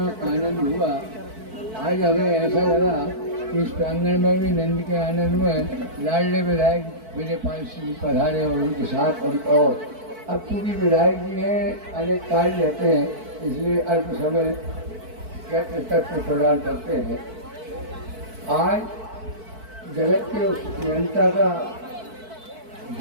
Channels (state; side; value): late; left; 4.5 ms